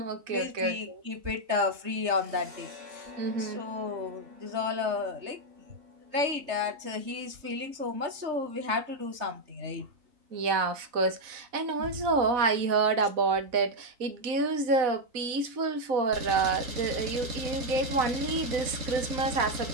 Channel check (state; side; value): late; left; 4.0 ms